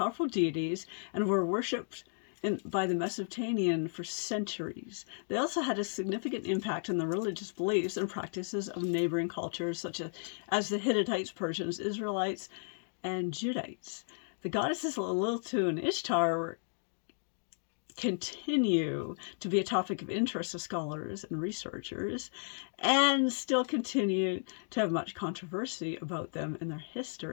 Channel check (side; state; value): right; silent; digital silence